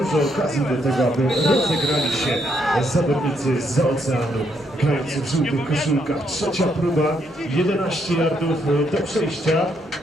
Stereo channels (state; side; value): normal; both; correlation 0.75